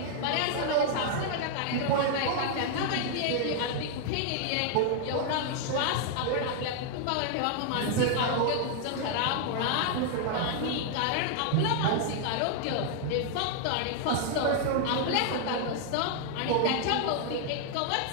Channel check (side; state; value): both; different; correlation 0.00